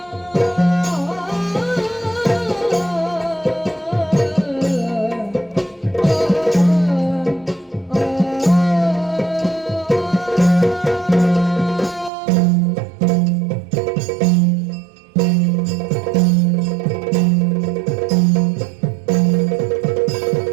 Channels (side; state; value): left; drops out; at 12.1 s